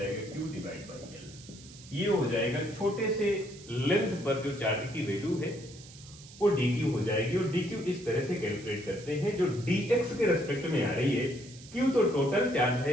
Q डिवाइड बाई L। ये हो जाएगा छोटे से लेंथ पर जो चार्ज की वैल्यू है वो dq हो जाएगी, और dq इस तरह से कैलकुलेट करते हैं जो dx के रेस्पेक्ट में आ रही है। q तो टोटल चार्ज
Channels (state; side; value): noise; right; hiss, 19 dB below the sound